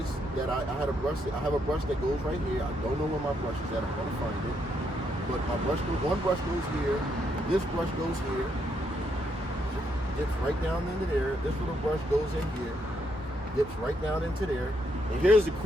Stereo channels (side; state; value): both; normal; correlation 0.76